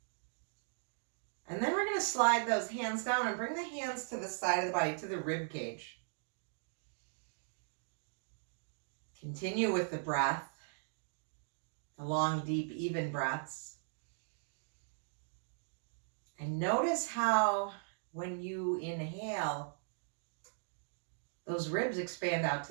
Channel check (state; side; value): silent; left; digital silence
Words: And then we're going to slide those hands down and bring the hands to the side of the body, to the rib cage. Continue with the breath, the long, deep, even breaths. And notice how when you inhale, those ribs expand out